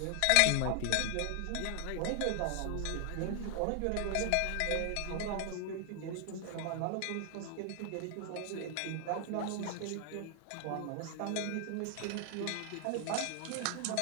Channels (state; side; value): different; both; correlation 0.00